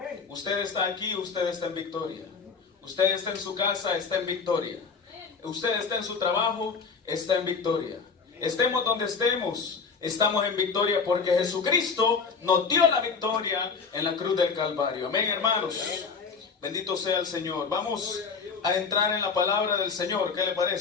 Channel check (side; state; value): right; quieter; 5.2 dB